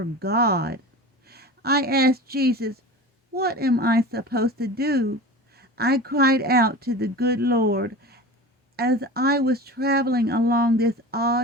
God. I asked Jesus, "What am I supposed to do?" I cried out to the good Lord as I was traveling along this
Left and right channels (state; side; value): normal; both; correlation 0.33